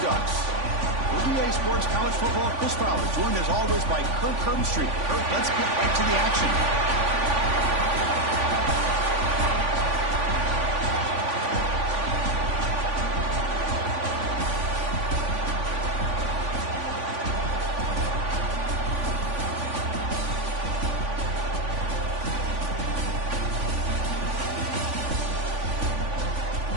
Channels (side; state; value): left; late; 3.5 ms